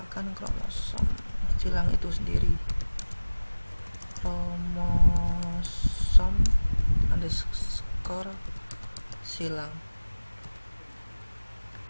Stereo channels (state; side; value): inverted; both; correlation -1.00